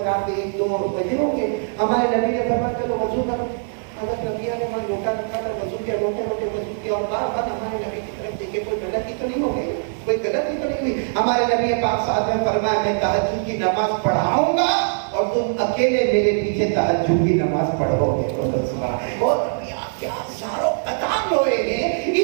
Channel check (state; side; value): silent; left; digital silence